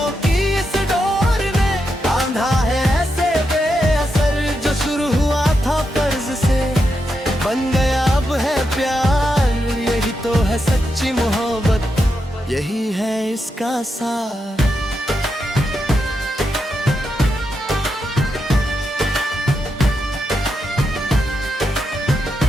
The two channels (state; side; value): normal; both; correlation 0.85